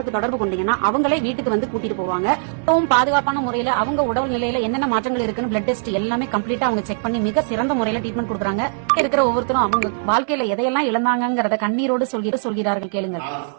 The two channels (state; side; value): silent; left; 65 dB below the other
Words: தொடர்பு கொண்டீங்கன்னா அவங்களே வீட்டுக்கு வந்து கூட்டிட்டு போவாங்க. ரொம்பவும் பாதுகாப்பான முறையில அவங்க உடல் நிலையில என்னென்ன மாற்றங்கள் இருக்குன்னு பிளட் டெஸ்ட் எல்லாமே கம்ப்ளீட்டா அவங்க செக் பண்ணி மிக சிறந்த முறையில ட்ரீட்மெண்ட் கொடுக்குறாங்க. இருக்கிற ஒவ்வொருத்தரும் அவங்க வாழ்க்கையில எதையெல்லாம் இழந்தாங்கிறத கண்ணீரோடு சொல்கிறார்கள். கேளுங்க.